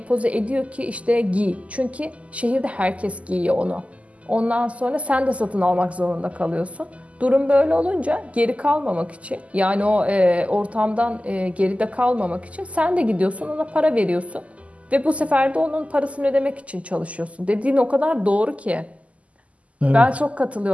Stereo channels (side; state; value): left; late; 0.066 ms